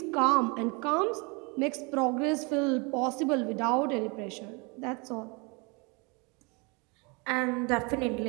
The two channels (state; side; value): quieter; left; 30.0 dB